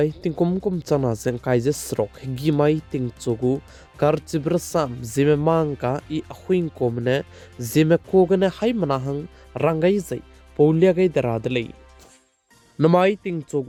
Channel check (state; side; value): identical; both; correlation 1.00